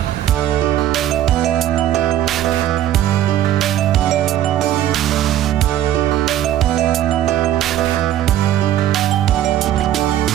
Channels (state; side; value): quieter; left; 12.2 dB